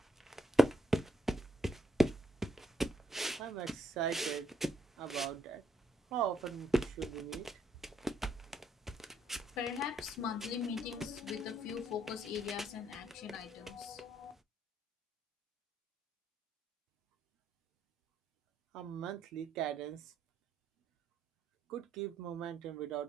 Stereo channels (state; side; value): normal; both; correlation 0.74